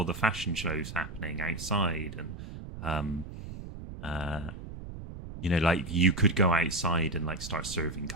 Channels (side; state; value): right; noise; rumble, 11 dB below the sound